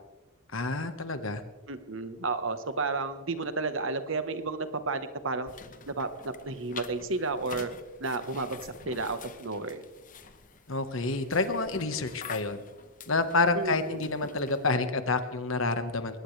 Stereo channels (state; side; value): normal; both; correlation -0.15